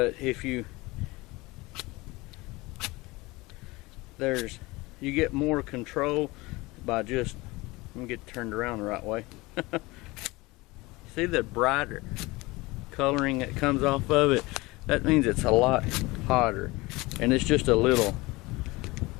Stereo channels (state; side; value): quieter; right; 22.3 dB